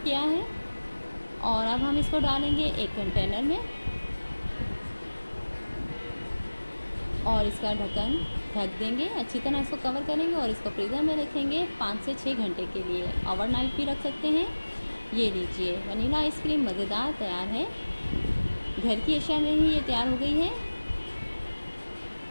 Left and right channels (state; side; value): inverted; both; correlation -1.00